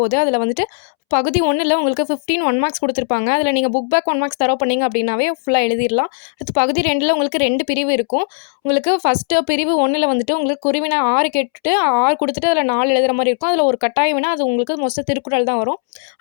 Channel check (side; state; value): right; silent; 68 dB below the other